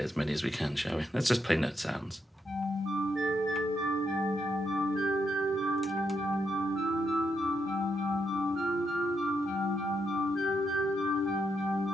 as many as we can, shall we? Let's just play note sounds.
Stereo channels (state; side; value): normal; both; correlation 0.80